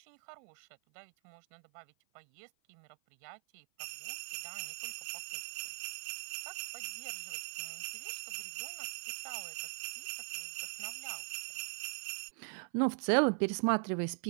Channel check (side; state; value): left; silent; 51 dB below the other